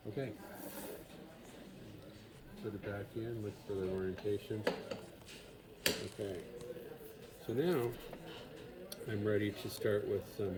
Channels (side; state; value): both; identical; correlation 1.00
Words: Okay. Put it back in, look for the orientation. Okay. So now I'm ready to start with